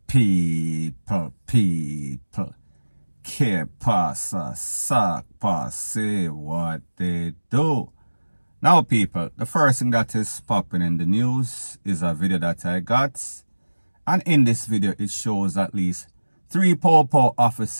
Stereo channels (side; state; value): both; inverted; correlation -1.00